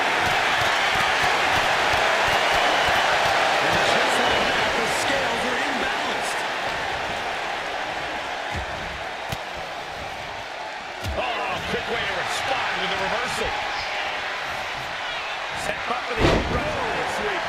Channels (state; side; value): identical; both; correlation 1.00